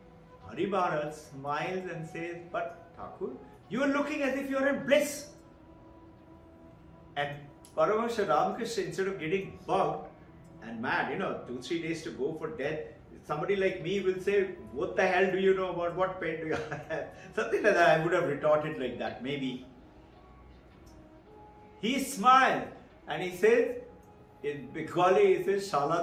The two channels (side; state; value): both; identical; correlation 1.00